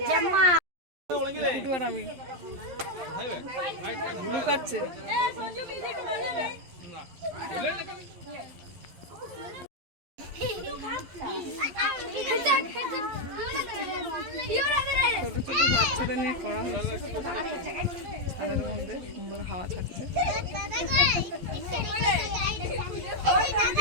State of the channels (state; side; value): late; left; 11 ms